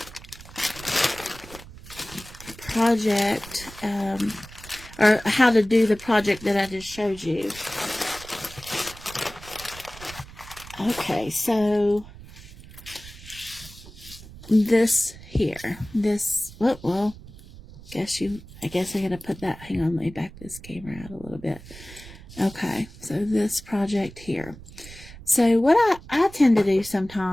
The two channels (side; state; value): right; noise; rumble, 17 dB below the sound